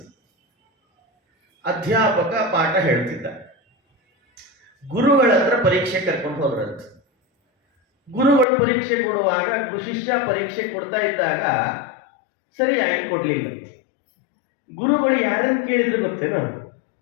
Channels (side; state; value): right; drops out; at 8.5 s